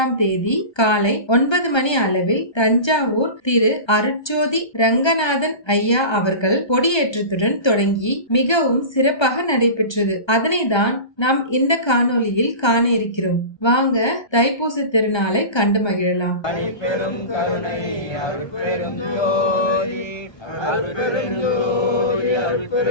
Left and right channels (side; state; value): right; late; 1.3 ms